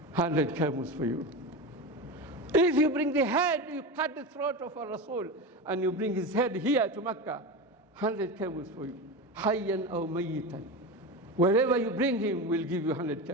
100 camels for you. If you bring the head, you cut the throat of a Rasul, and you bring his head here to Mecca, 100 camels for you. Hayyan aw mayyitan. Wherever you bring him, we'll give you 100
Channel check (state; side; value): normal; both; correlation 0.23